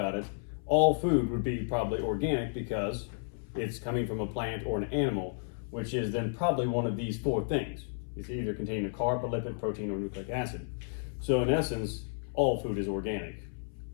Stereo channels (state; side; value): silent; right; 56 dB below the other